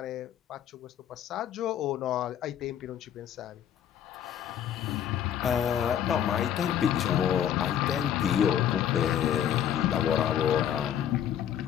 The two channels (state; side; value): quieter; right; 9.8 dB